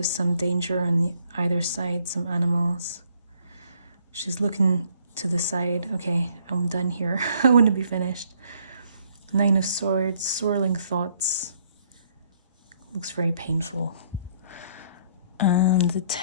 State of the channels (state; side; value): inverted; both; correlation -0.65